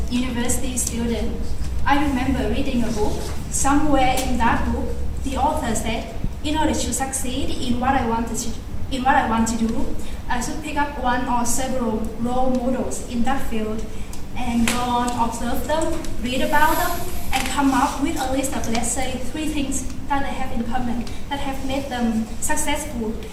university student, I remember reading a book. Somewhere in that book, the author said, in order to succeed in what I want to do, I should pick up one or several role models in that field and go on, observe them, read about them, and come up with a list of, let's say, 3 things that they have in common, that have made them successful.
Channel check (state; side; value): identical; both; correlation 1.00